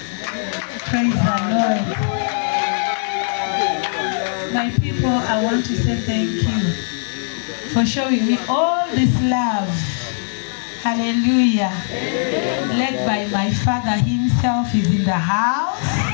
Praise the Lord. My people, I want to say thank you for showing me all this love. Hallelujah. Led by my Father himself is in the house.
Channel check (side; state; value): right; silent; 66 dB below the other